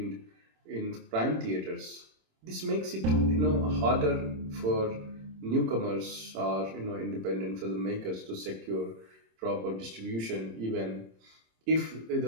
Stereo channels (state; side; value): late; left; 26 ms